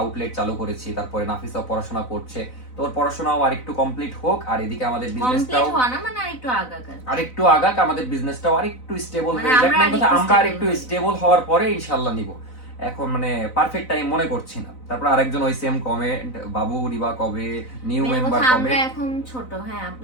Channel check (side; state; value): right; late; 4.0 ms